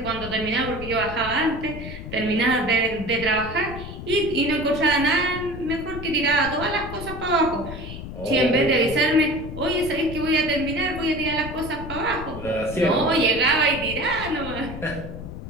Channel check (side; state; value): left; noise; rumble, 10 dB below the sound